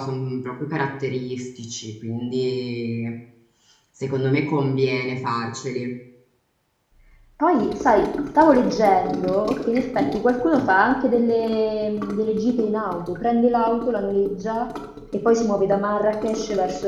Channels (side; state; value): both; identical; correlation 1.00